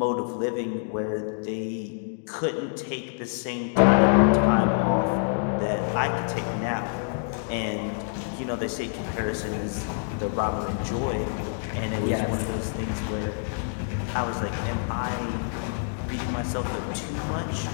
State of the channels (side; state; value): right; silent; digital silence